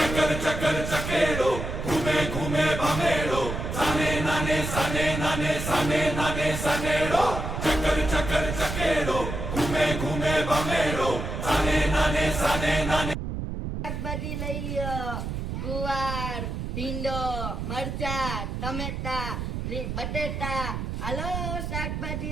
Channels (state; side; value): noise; right; rumble, 4 dB below the sound